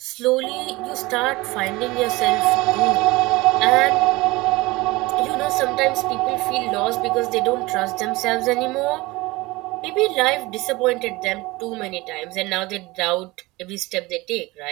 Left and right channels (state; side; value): quieter; left; 21.6 dB